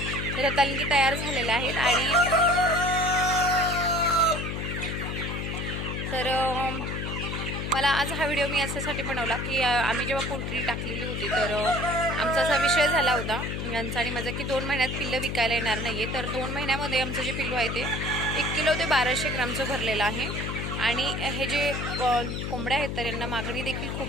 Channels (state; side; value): noise; left; hum, 3 dB below the sound